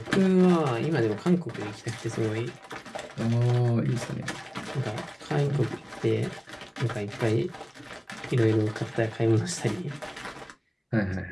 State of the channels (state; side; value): identical; both; correlation 1.00